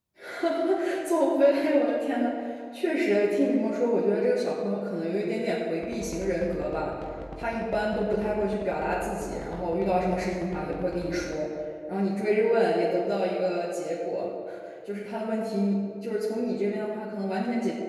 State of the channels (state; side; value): identical; both; correlation 1.00